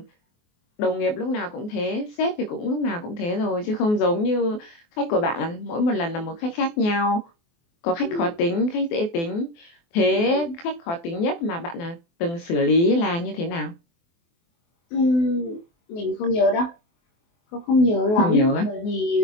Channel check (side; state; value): right; late; 24 ms